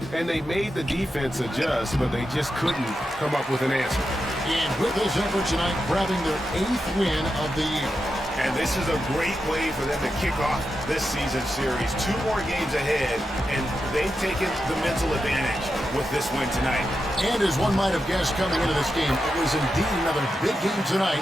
And they made the defense adjust, but they just couldn't come up with an answer. And with this effort tonight, grabbing their 8th win of the year. And this is a great way for them to kick off this season series. 2 more games ahead, and they've taken the mental advantage with this win tonight. And as one might have guessed coming into this game, it was indeed another big game tonight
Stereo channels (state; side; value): normal; both; correlation 0.88